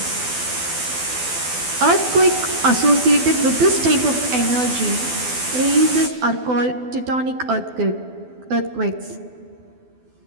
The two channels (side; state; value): left; late; 12 ms